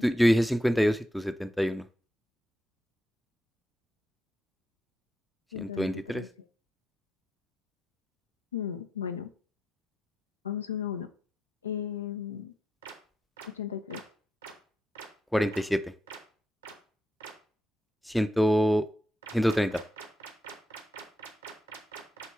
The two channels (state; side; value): normal; both; correlation 0.85